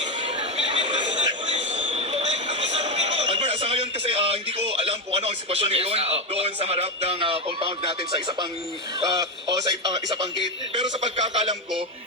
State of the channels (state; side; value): normal; both; correlation 0.09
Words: Albert, sa ngayon kasi hindi ko alam kung ano ang sitwasyon ngayon doon sa harap ng compound natin sa isa pang isa pang gate. Pero sa pagkakalam ko,